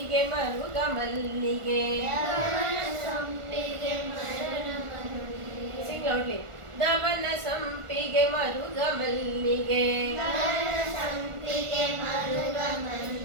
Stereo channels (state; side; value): late; left; 1.4 ms